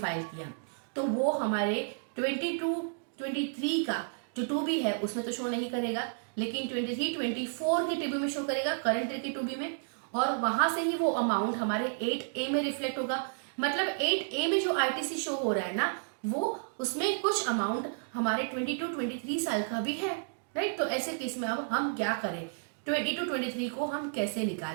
किया, तो वो हमारे 22-23 का जो 2B है उसमें तो शो नहीं करेगा, लेकिन 23-24 के 2B में शो करेगा, करंट ईयर के 2B में, और वहां से ही वो अमाउंट हमारे 8A में रिफ्लेक्ट होगा। मतलब 8A में जो ITC शो हो रहा है ना, वो उसमें कुछ अमाउंट हमारे 22-23 साल का भी है, राइट। तो ऐसे केस में अब हम क्या करें, 22-23 को हम कैसे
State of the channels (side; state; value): left; silent; digital silence